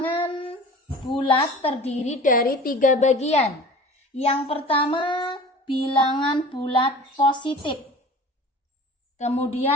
bulat terdiri dari 3 bagian. Yang pertama bilangan bulat positif.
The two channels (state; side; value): normal; both; correlation 0.41